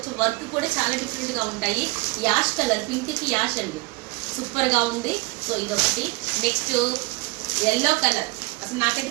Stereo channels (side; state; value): left; quieter; 26.2 dB